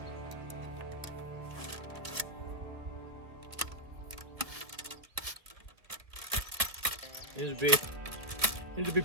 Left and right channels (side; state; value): left; late; 1.4 ms